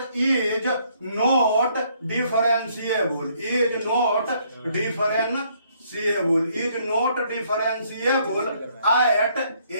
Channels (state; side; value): inverted; both; correlation -0.67